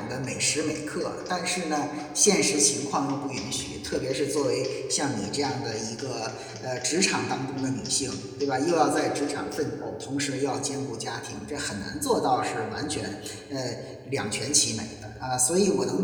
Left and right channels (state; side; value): identical; both; correlation 1.00